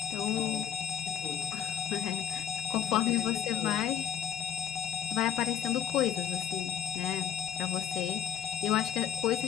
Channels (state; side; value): quieter; right; 9.5 dB